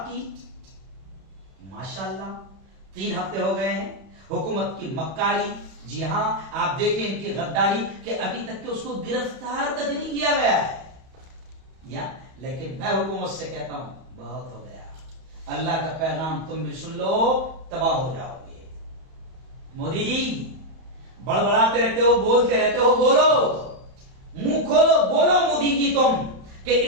کی۔ ماشاءاللہ 3 ہفتے ہو گئے ہیں، حکومت کی مکاری، جی ہاں آپ دیکھیں ان کی غداری کہ ابھی تک کہ اس کو گرفتار تک نہیں کیا گیا ہے، لیکن میں حکومت سے کہتا ہوں بہت ہو گیا، اللہ کا پیغام تم بھی سن لو، تباہ ہو جاؤ گے۔ مودی جی بڑبڑاتے رہتے ہو، بولتے رہتے ہو، بولو، منہ کھولو، بولو مودی جی تم کہ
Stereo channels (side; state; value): left; late; 31 ms